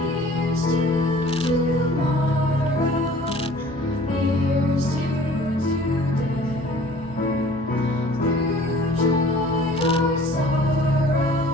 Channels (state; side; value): normal; both; correlation 0.49